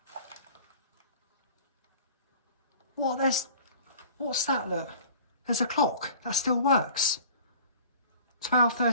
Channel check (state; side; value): inverted; both; correlation -0.45